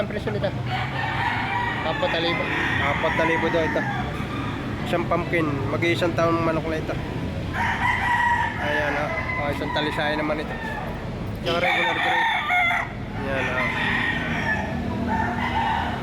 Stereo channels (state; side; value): identical; both; correlation 1.00